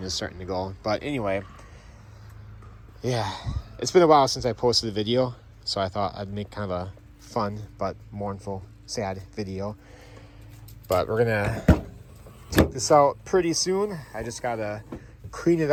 is starting to go, but anyway, yeah, it's been a while since I posted a video, so I thought I'd make kind of a fun but mournful, sad video. But we're gonna take this out pretty soon. I just gotta clean it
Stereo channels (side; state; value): both; identical; correlation 1.00